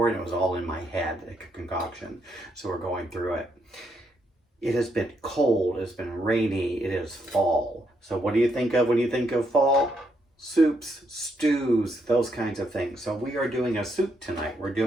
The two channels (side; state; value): both; normal; correlation 0.76